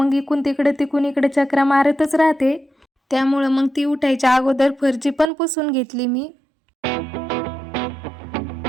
इकडून तिकडे चक्रा मारतच राहते, त्यामुळे मग ती उठायच्या अगोदर फरची पण पुसून घेतली मी।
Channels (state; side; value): drops out; left; at 5.2 s